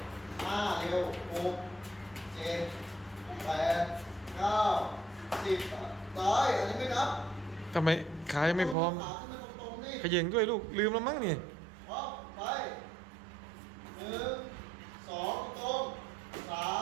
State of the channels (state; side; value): drops out; left; at 8.8 s